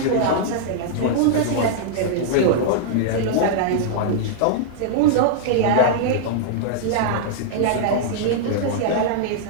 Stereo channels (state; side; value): different; both; correlation -0.01